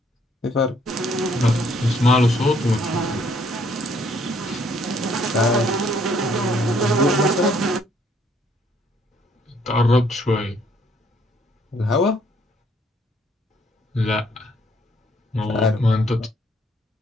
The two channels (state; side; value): normal; both; correlation 0.65